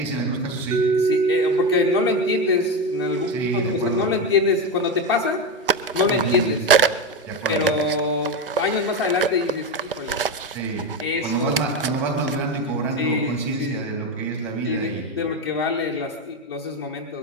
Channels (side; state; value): both; normal; correlation 0.15